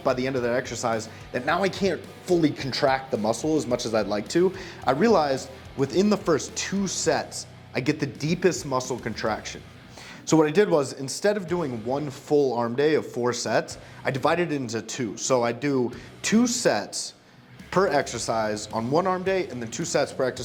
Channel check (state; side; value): identical; both; correlation 1.00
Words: by the end of that exercise that now I can't fully contract the muscle as much as I'd like to. I realized within the first 2 sets, I get the deepest muscle contraction. So what I did was, instead of doing one full arm day of 4 sets, I divided it into 2. So I do 2 sets per exercise on one arm day and then 2 sets per